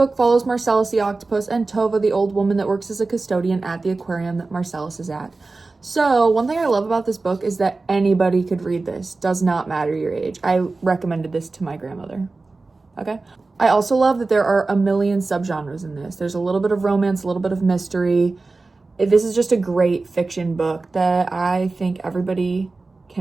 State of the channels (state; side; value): quieter; left; 3.6 dB